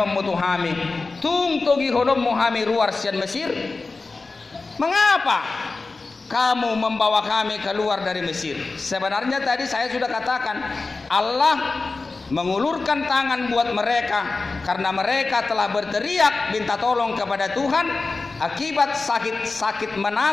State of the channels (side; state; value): right; quieter; 3.8 dB